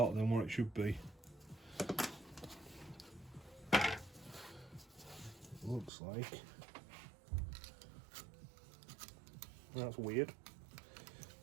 than what it should be. Looks like. That's weird.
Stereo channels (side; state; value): left; drops out; at 5.9 s